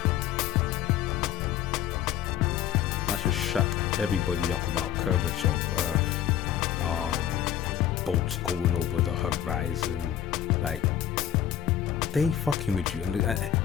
That should shut everybody up about curvature of Earth, bolts going over the horizon. Like, they fucking with you. And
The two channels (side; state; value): right; quieter; 10.8 dB